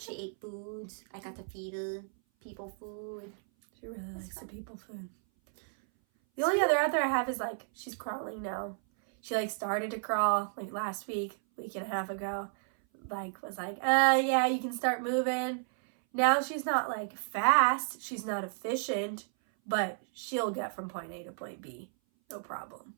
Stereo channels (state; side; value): silent; left; 56 dB below the other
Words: ate foods. I got to feed her people food. She really likes the people food. The only other out there I have is like, she's crawling now. She like started to crawl like last week and a half ago. Like was like, yeah, you can start moving. Now she's not like fast. She's not efficient, but she'll get from point A to point B. No problem.